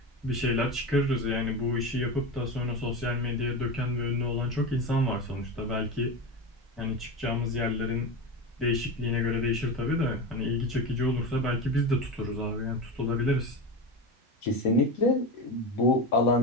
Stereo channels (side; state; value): both; normal; correlation 0.22